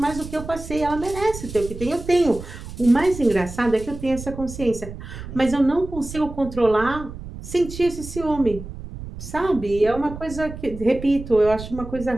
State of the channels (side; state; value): right; noise; rumble, 11 dB below the sound